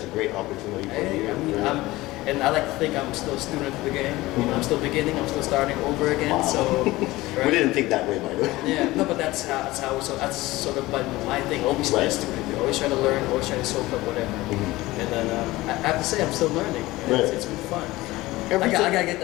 a great opportunity for you. I mean, and I like to think I'm still a student of the game. I'm still beginning. I'm still starting over again. Wow. So We didn't think that way, by the way. yeah, no, but that's how. So that's sort of my thing. Always be a Right. student. Always trying to learn. Always trying to soak up whatever. And then I have to say I'm still learning. And Right. it's been fun. Every I time- gotta get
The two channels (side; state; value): right; quieter; 18.8 dB